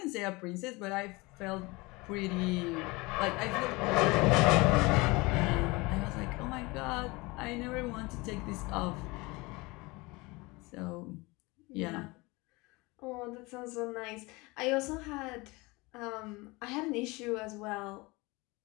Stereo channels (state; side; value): quieter; right; 24.2 dB